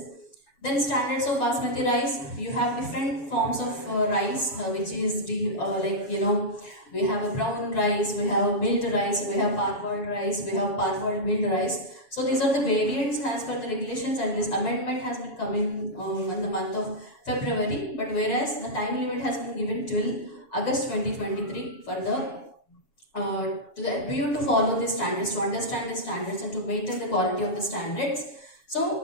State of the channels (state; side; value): late; right; 7.2 ms